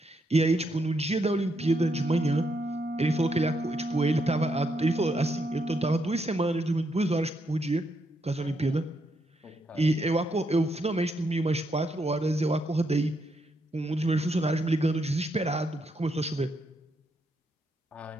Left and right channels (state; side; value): normal; both; correlation 0.78